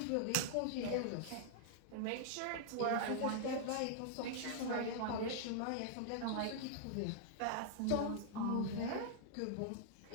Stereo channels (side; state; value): both; different; correlation -0.01